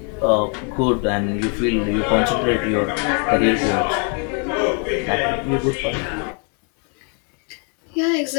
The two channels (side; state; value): right; quieter; 38.8 dB